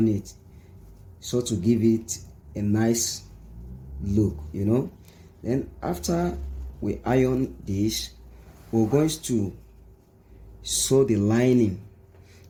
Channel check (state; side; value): identical; both; correlation 1.00